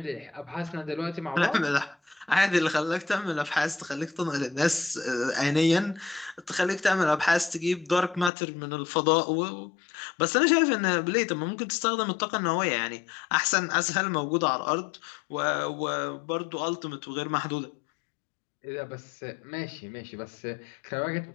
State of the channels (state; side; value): drops out; right; at 8.3 s